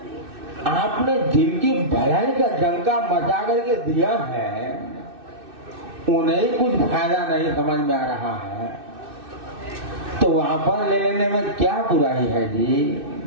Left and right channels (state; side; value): late; left; 2.6 ms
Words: आपने जिनकी भलाई का डंका मचा करके दिया है, उन्हें कुछ फायदा नहीं समझ में आ रहा है, तो वापस ले लेने में क्या बुराई है जी?